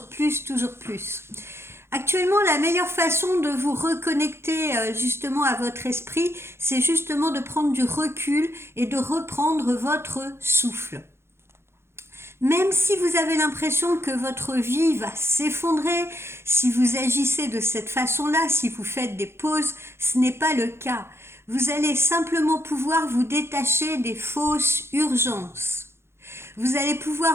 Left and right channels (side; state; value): left; late; 0.12 ms